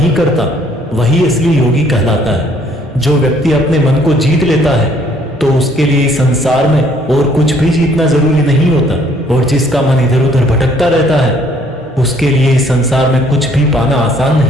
करता वही असली योगी कहलाता है। जो व्यक्ति अपने मन को जीत लेता है तो उसके लिए इस संसार में और कुछ भी जीतना जरूरी नहीं होता, और जिसका मन इधर उधर भटकता रहता है उसके लिए इस संसार में कुछ भी पाना आसान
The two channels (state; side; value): normal; both; correlation 0.62